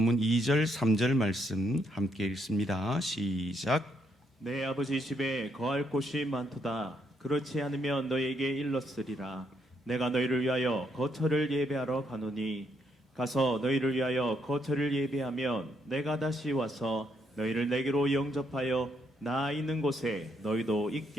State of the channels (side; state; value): both; normal; correlation 0.75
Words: 2절 3절 말씀 함께 읽습니다. 시작. 내 아버지 집에 거할 곳이 많도다. 그렇지 않으면 너희에게 일렀으리라. 내가 너희를 위하여 거처를 예배하러 가노니 가서 너희를 위하여 거처를 예배하면 내가 다시 와서 너희를 내게로 영접하여 나 있는 곳에 너희도